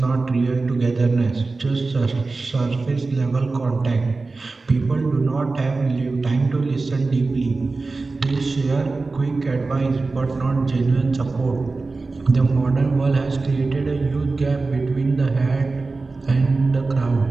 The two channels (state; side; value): quieter; left; 3.7 dB